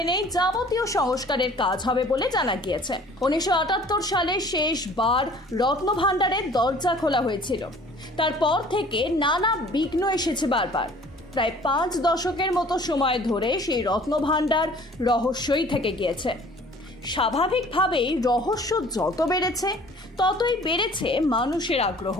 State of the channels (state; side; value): normal; both; correlation 0.51